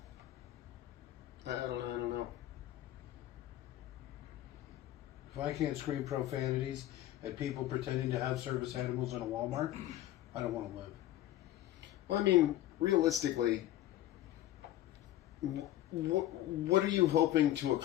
I don't know. If I can't scream profanities at people pretending to have service animals in a Walmart, I don't want to live. Well, I mean, realistically, what are you hoping to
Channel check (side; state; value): right; quieter; 13.9 dB